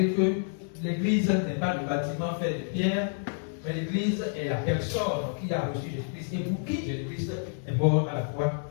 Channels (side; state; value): right; silent; digital silence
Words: que l'Église n'est pas le bâtiment fait de pierre, mais l'Église est la personne qui a reçu Jésus-Christ et pour qui Jésus-Christ est mort à la croix,